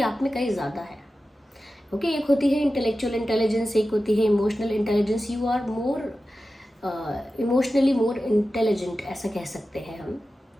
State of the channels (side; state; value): both; normal; correlation 0.93